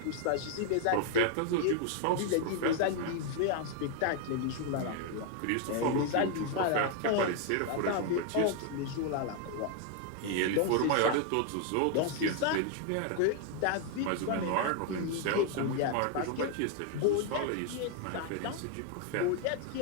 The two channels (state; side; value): different; both; correlation 0.00